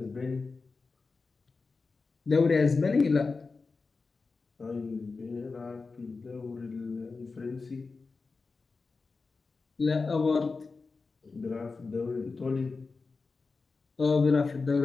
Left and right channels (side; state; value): right; quieter; 4.2 dB